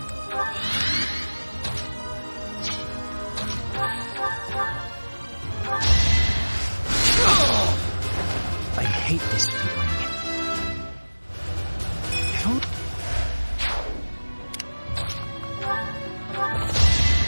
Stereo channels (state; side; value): inverted; both; correlation -1.00